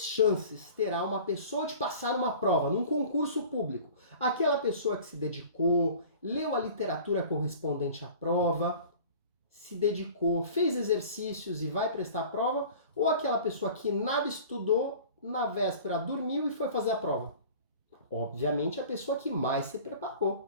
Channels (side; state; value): both; inverted; correlation -0.43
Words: chances terá uma pessoa de passar uma prova, num concurso público, aquela pessoa que se dedicou, leu a literatura correspondente à prova, se dedicou, fez exercícios e vai prestar a prova, ou aquela pessoa que nada estudou, na véspera dormiu e foi fazer a prova? Obviamente a pessoa que mais se